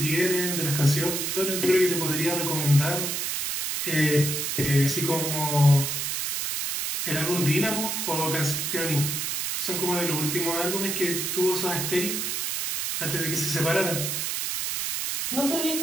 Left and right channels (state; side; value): noise; right; hiss, 1 dB below the sound